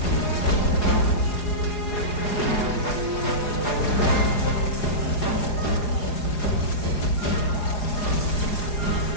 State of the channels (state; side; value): late; right; 4.8 ms